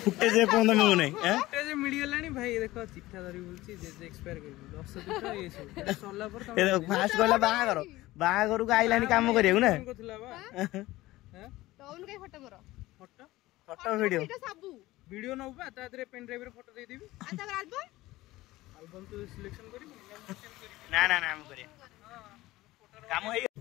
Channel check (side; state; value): right; quieter; 17.9 dB